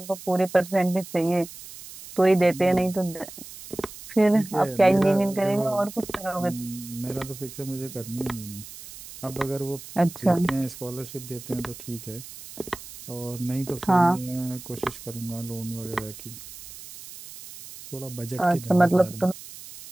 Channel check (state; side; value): noise; right; hiss, 15 dB below the sound